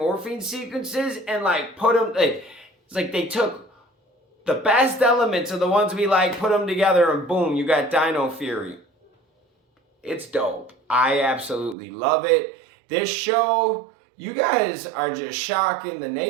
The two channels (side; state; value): left; drops out; at 11.8 s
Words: sequences and like put them, it's like they took the best elements of the ones we like, put them together and boom, you got Dino Fury. It's dope. I absolutely love it. This show, you guys are just shocking the